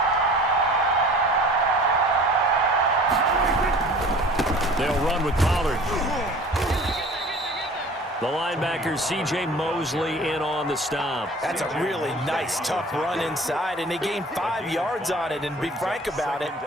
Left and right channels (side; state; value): both; normal; correlation 0.45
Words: They'll run with Pollard. The linebacker, C.J. Mosley, in on the stop. That's a really nice, tough run inside, and they gained 5 yards on it. And be frank about it,